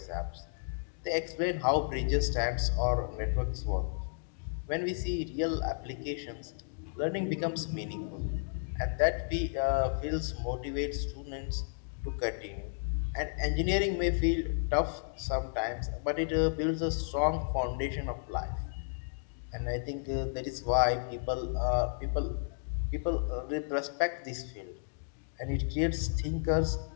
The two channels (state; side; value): silent; right; digital silence